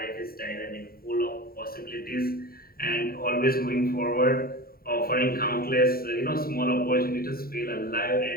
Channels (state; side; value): late; right; 0.43 ms